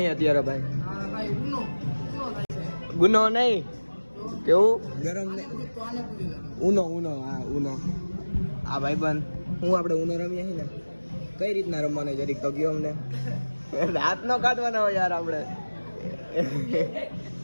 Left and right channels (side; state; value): both; inverted; correlation -1.00